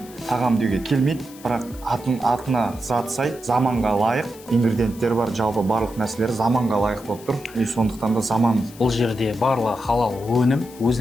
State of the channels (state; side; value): noise; left; hiss, 21 dB below the sound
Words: тағам деуге келмейді, бірақ атына зат сай, заманға лайық ингредиенттер бар. Жалпы барлық нәрселер заманға лайық болып тұр. Сондықтан да заман. Бұл жерде барлығы халал өнім,